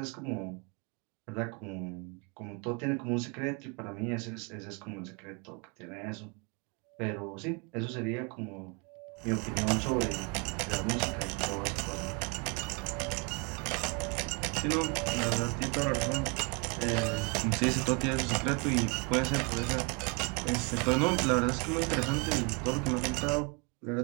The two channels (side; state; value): left; quieter; 32.4 dB